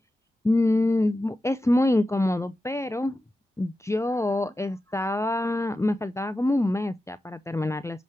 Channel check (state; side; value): normal; both; correlation 0.92